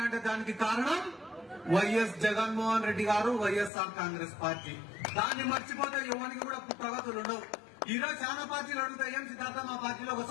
అంటే దానికి కారణం వైఎస్ జగన్మోహన్ రెడ్డి గారు, వైఎస్ఆర్ కాంగ్రెస్ పార్టీ. దాన్ని మర్చిపోతే ఎవరికి కూడా ప్రగతులు ఉండవు. ఈరోజు చాలా పార్టీలు అడుగుతాయి, ఏం సిద్ధార్థ మా పార్టీలో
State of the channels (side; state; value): right; drops out; at 3.7 s